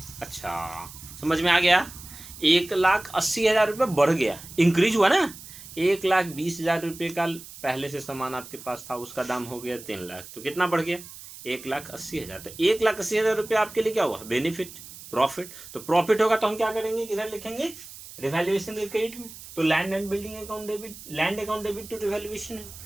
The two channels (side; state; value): right; noise; hiss, 16 dB below the sound